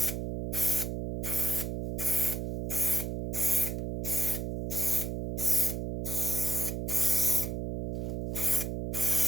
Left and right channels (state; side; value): noise; right; hum, 3 dB below the sound